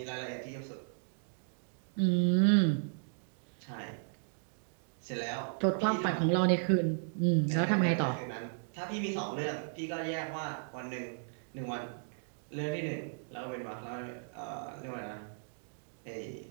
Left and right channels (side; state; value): left; silent; digital silence